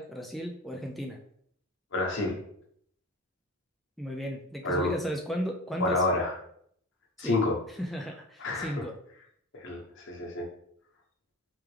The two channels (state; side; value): normal; both; correlation 0.33